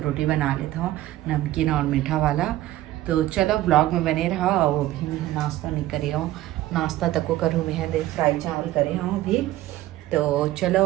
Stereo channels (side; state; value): left; quieter; 15.2 dB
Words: बना लेता हूँ नमकीन और मीठा वाला। तो चलो ब्लॉग में बने रहो। और अभी मैं नाश्ता नहीं करी हूँ, नाश्ता तक को करूँ मैं दे फ्राई चावल करे हूँ अभी। तो चलो